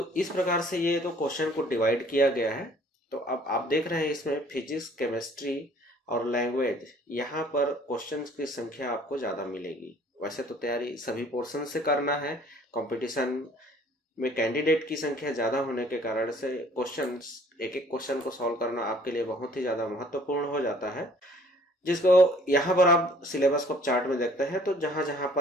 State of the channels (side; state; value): both; normal; correlation 0.56